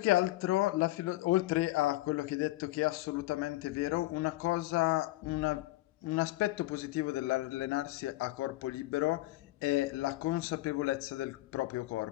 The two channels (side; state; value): right; quieter; 18.0 dB